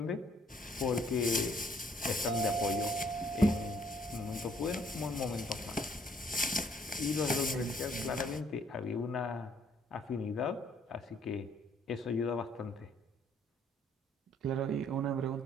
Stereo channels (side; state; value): both; normal; correlation 0.64